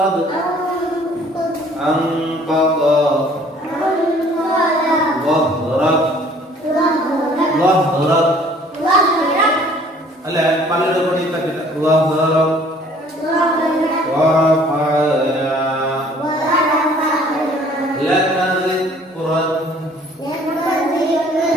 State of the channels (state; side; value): normal; both; correlation 0.55